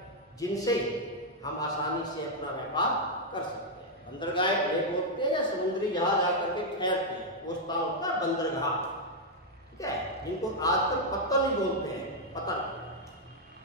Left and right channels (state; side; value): normal; both; correlation -0.02